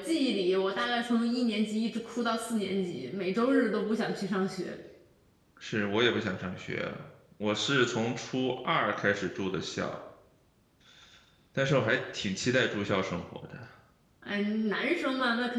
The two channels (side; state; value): both; identical; correlation 1.00